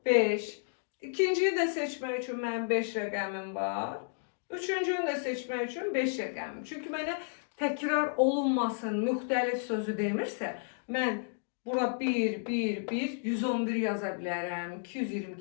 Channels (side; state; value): right; silent; digital silence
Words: 5. İkinciyi də seçmək üçün mənim 5 rəqəmim var. Üçüncünü də seçmək üçün 5 rəqəmim. Çünki mənə təkrar olunmasın, müxtəlif sözü demirsə, mən bura 1, 1, 1, 111 yaza bilərəm,